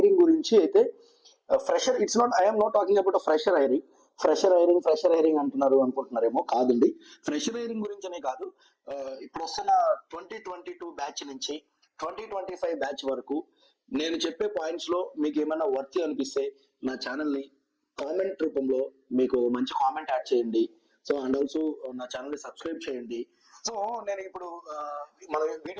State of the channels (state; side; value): identical; both; correlation 1.00